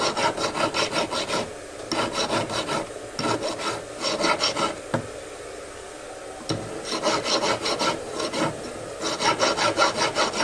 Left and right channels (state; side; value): identical; both; correlation 1.00